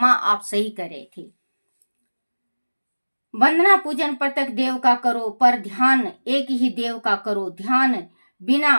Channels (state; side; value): inverted; both; correlation -1.00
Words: आप सही कर रहे थे। वंदना पूजन प्रत्येक देव का करो, पर ध्यान एक ही देव का करो। ध्यान